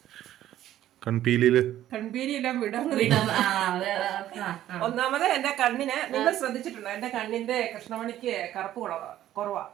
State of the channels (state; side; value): quieter; left; 12.7 dB